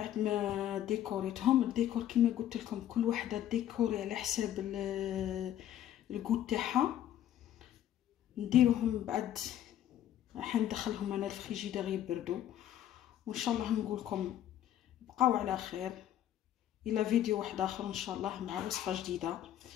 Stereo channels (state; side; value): quieter; right; 11.5 dB